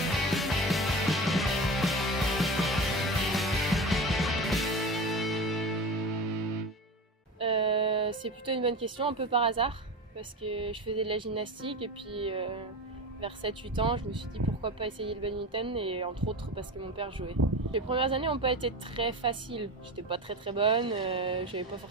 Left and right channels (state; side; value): normal; both; correlation 0.28